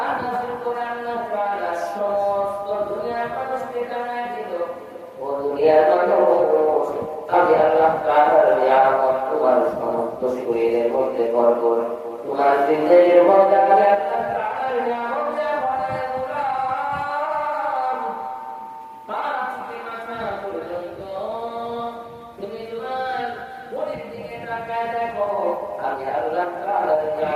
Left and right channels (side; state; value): both; identical; correlation 1.00